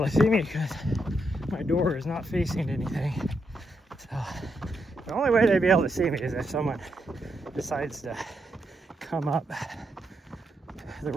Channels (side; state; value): both; normal; correlation 0.81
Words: to see me because my door is not facing anything. So the only way they'd be able to see me is if someone decides to come up the